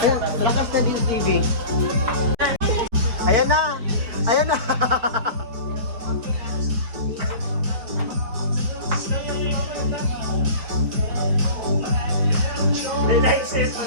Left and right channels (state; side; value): late; left; 4.5 ms